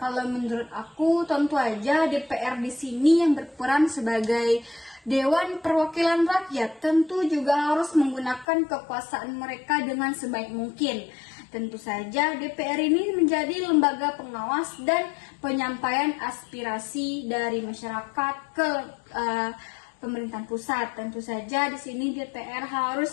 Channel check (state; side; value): drops out; right; at 8.5 s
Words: menurut aku tentu aja DPR di sini yang berperan sebagai Dewan Perwakilan Rakyat tentu juga harus menggunakan kekuasaan mereka dengan sebaik mungkin. Tentu saja DPR ini menjadi lembaga pengawas dan penyampaian aspirasi dari masyarakat ke pemerintahan pusat. Tentu saja di sini DPR